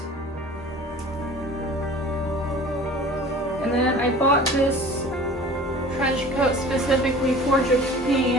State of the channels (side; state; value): both; normal; correlation 0.43